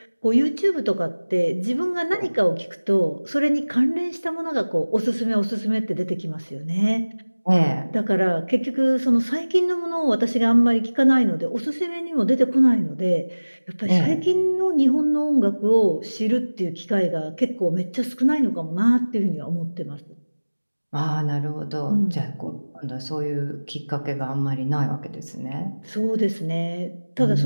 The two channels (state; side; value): inverted; both; correlation -1.00